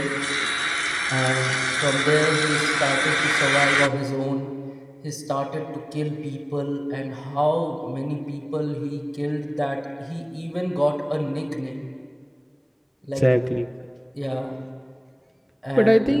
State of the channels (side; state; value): both; identical; correlation 1.00